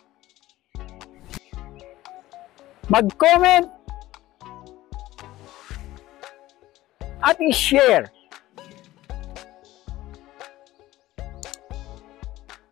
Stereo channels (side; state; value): right; quieter; 16.2 dB